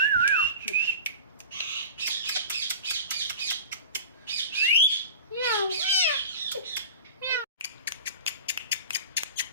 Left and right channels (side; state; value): both; inverted; correlation -0.36